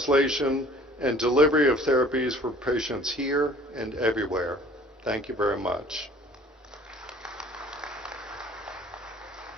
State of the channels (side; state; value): both; normal; correlation 0.51